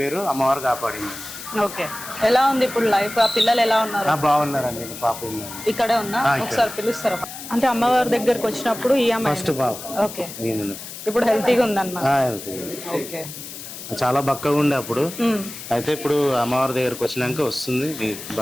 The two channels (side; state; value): left; noise; hiss, 11 dB below the sound